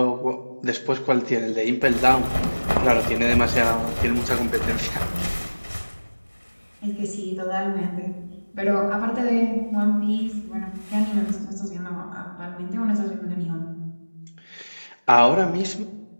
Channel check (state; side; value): inverted; both; correlation -1.00